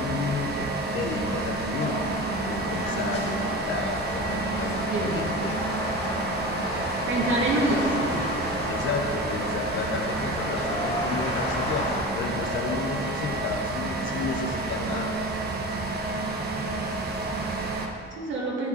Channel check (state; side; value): normal; both; correlation 0.30